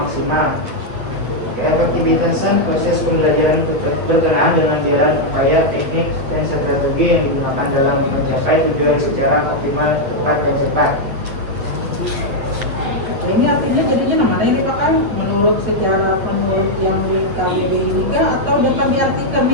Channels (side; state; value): left; late; 8.6 ms